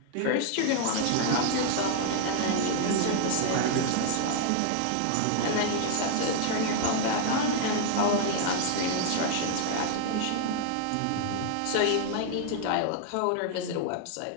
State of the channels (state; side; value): different; both; correlation 0.00